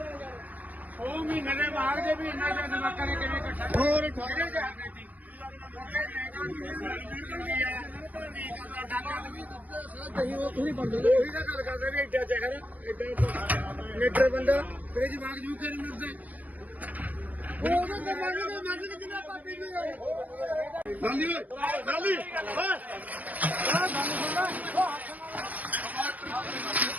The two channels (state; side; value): late; left; 0.078 ms